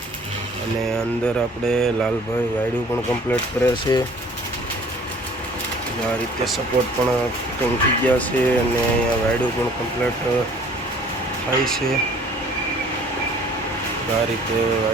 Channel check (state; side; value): normal; both; correlation 0.53